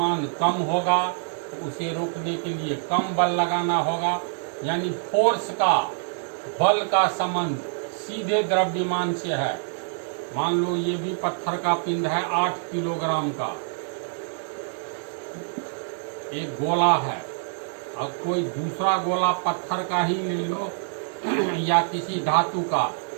कम होगा तो उसे रोकने के लिए कम बल लगाना होगा। यानी फोर्स का, बल का संबंध सीधे द्रव्यमान से है। मान लो ये भी पत्थर का पिंड है 8 किलोग्राम का, एक गोला है, और कोई दूसरा गोला पत्थर का ही ले लो या किसी धातु का,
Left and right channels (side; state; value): left; silent; 61 dB below the other